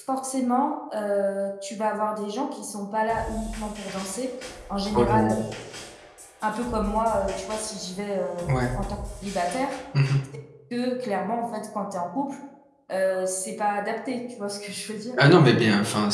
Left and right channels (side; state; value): both; identical; correlation 1.00